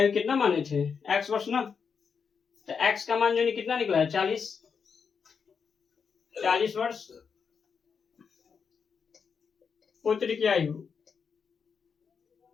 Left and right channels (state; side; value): quieter; right; 6.1 dB